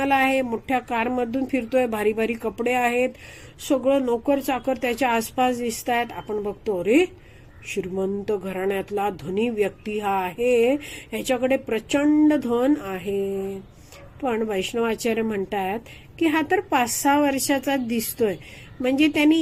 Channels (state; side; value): identical; both; correlation 1.00